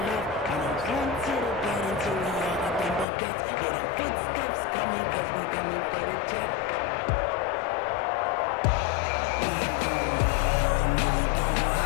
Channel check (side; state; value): right; drops out; at 3.1 s